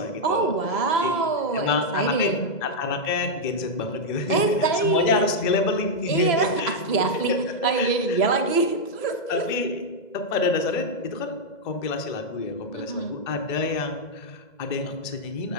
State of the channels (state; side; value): late; right; 2.0 ms